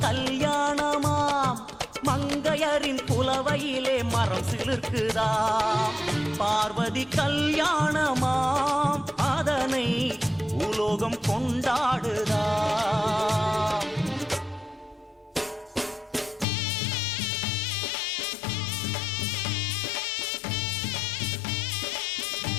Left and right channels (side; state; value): right; drops out; at 16.4 s